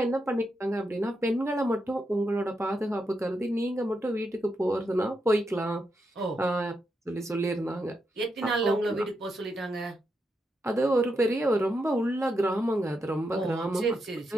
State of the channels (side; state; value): both; normal; correlation 0.83